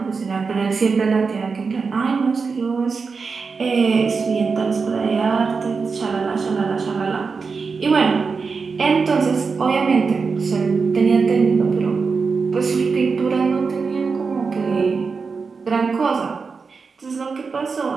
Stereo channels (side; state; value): left; quieter; 4.9 dB